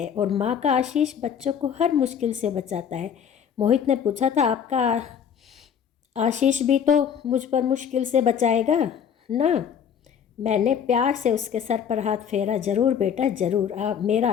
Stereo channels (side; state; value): right; quieter; 7.9 dB